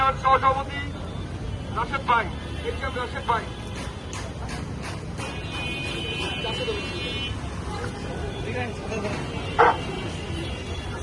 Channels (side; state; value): both; identical; correlation 1.00